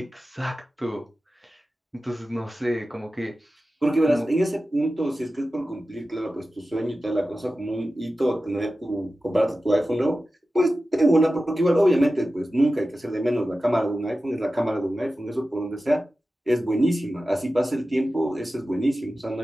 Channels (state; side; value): normal; both; correlation 0.94